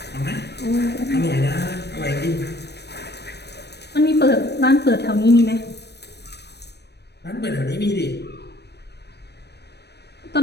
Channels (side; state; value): right; late; 0.48 ms